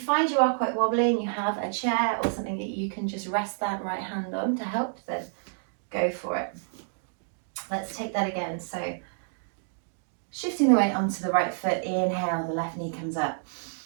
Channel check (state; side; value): silent; left; digital silence